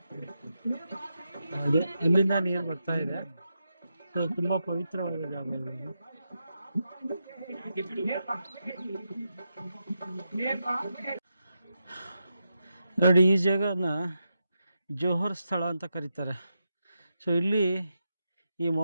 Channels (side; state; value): both; inverted; correlation -0.86